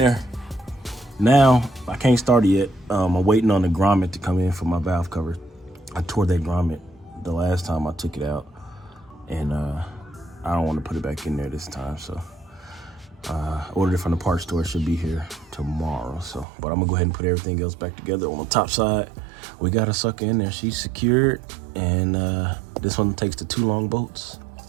Now I can't start it yet. I'm waiting on the grommet to come in for my valve cover. I tore that grommet the last time I took it out, and I don't want to put it back in there this time. So ordered it from the parts store. It should be here tomorrow. So, but I'm gonna go ahead and put everything else back together. On the top side, we got a sucker in there. She's secured, and this one takes the 2 long bolts.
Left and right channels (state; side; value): drops out; left; at 16.4 s